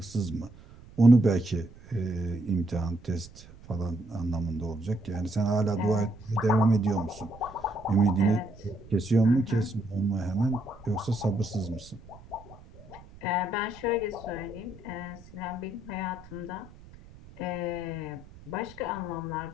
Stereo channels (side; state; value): right; noise; rumble, 20 dB below the sound